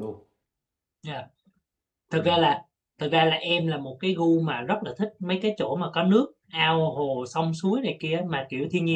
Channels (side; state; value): both; identical; correlation 1.00